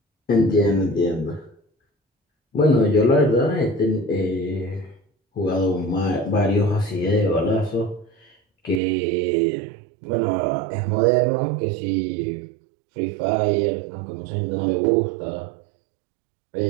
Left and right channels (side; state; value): left; drops out; at 8.8 s